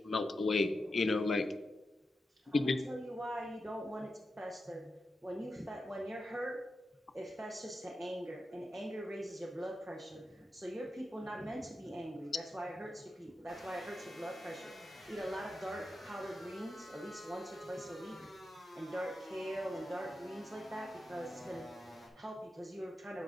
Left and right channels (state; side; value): normal; both; correlation 0.89